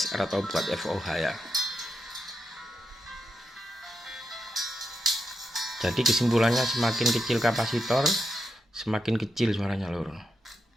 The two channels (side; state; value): both; normal; correlation 0.85